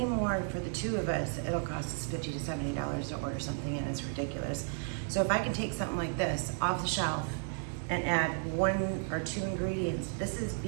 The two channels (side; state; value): left; silent; 55 dB below the other